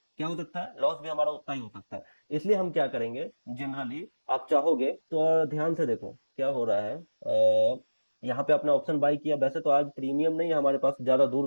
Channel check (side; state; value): both; inverted; correlation -1.00